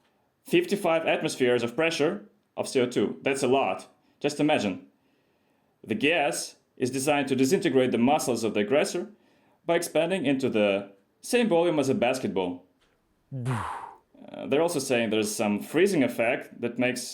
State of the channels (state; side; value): identical; both; correlation 1.00